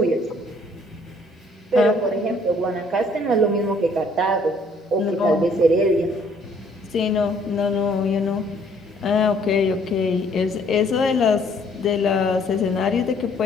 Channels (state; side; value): normal; both; correlation 0.62